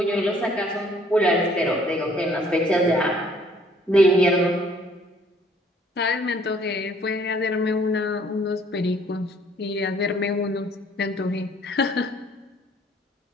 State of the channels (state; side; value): normal; both; correlation 0.60